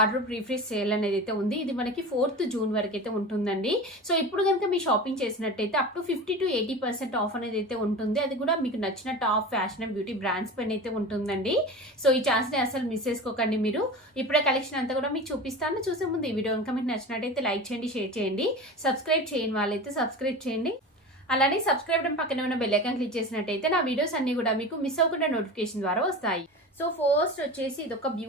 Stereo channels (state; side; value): normal; both; correlation 0.31